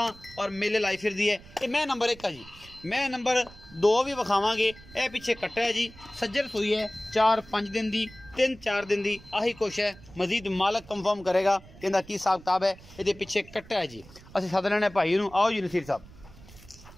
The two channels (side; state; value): right; noise; rumble, 21 dB below the sound